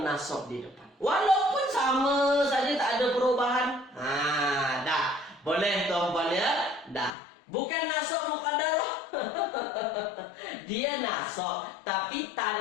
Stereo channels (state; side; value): drops out; right; at 7.2 s